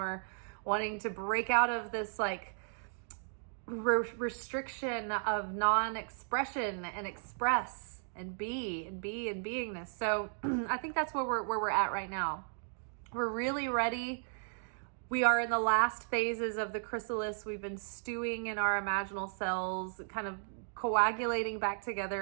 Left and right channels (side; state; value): left; silent; digital silence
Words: wanting to break out of this like restriction of non-expression and express and be and beingness. So I think that's where we're at right now. We're really ready We are in the last phases of the chrysalis. We've been stewing in our imaginal cells, kind of coagulating back